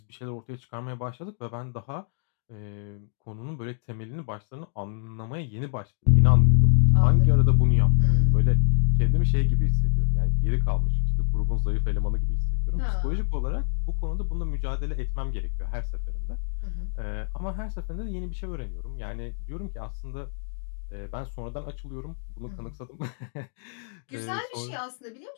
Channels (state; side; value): silent; right; digital silence